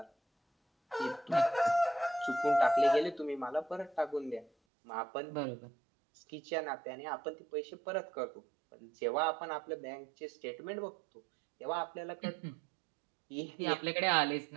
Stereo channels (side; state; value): left; drops out; at 4.5 s